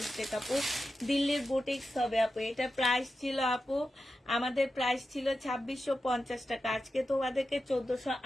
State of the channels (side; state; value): both; normal; correlation 0.91